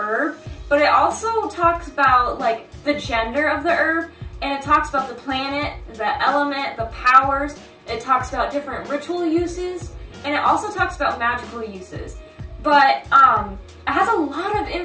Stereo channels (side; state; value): both; identical; correlation 1.00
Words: but it also talks about like the gender of the herb, and it talks about the planet, the element, the powers. It talks about different ritual uses, and it also talks about magical uses. But it has a lot of